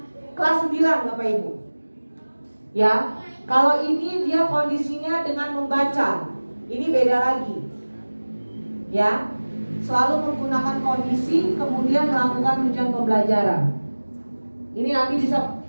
Kelas 9 Bapak Ibu. Ya, kalau ini dia kondisinya dengan membaca. Ini beda lagi. Ya, selalu menggunakan kondisi kemudian melakukan tujuan pembelajaran. Ini nanti bisa,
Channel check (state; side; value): inverted; both; correlation -1.00